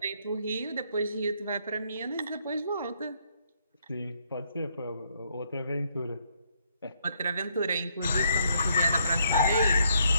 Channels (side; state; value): both; inverted; correlation -0.72